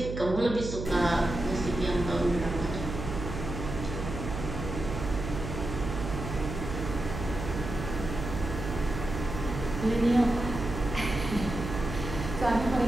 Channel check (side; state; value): right; noise; hum, 6 dB below the sound